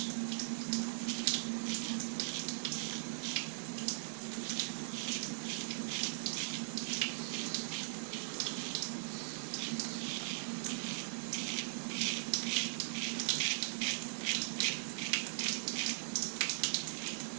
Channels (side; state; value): left; silent; digital silence